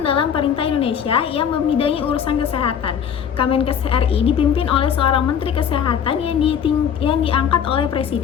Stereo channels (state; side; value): quieter; right; 8.2 dB